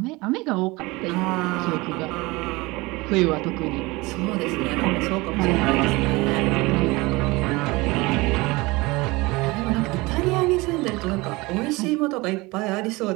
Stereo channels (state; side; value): quieter; left; 22.8 dB